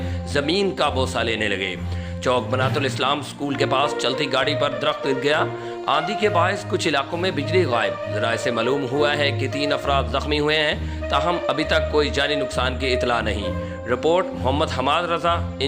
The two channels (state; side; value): identical; both; correlation 1.00